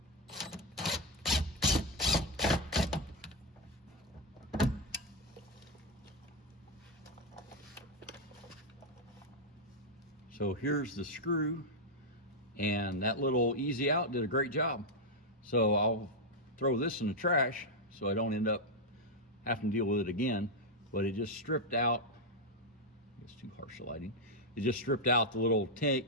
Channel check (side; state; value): both; normal; correlation 0.02